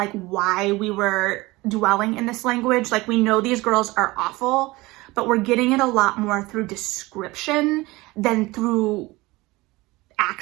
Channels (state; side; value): quieter; left; 21.2 dB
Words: why we were dwelling in this language. Like, we know these girls are awful, but we're getting it a lot more through description than through